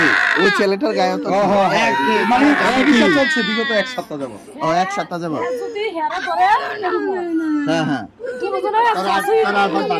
ওই ছেলেটার গায়ে তো চলছে বিগত এক সপ্তাহ যাবো। ও এক সপ্তাহ যাবো। হ্যাঁ হ্যাঁ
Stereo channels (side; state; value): both; identical; correlation 1.00